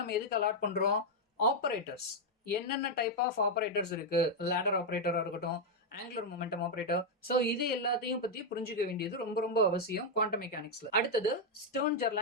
நம்ம எதுக்கு அலாட் பண்றோம், ஆபரேட்டர்ஸ். என்னென்ன டைப் ஆஃப் ஆபரேட்டர்ஸ் இருக்கு, லேடர் ஆபரேட்டரா இருக்கட்டும், ஆங்குலர் மொமெண்டம் ஆபரேட்டர். சோ இது எல்லாத்தையும் பத்தி புரிஞ்சுக்க வேண்டியது ரொம்ப ரொம்ப அவசியம் குவாண்டம் மெக்கானிக்ஸ்ல. அடுத்தது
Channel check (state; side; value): normal; both; correlation 0.00